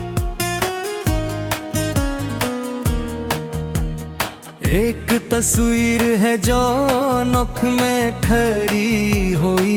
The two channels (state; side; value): identical; both; correlation 1.00